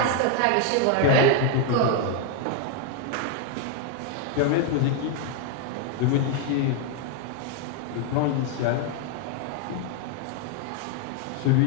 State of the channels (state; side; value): different; both; correlation 0.00